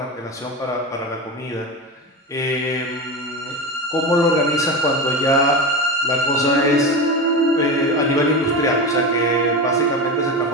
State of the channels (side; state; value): both; normal; correlation 0.22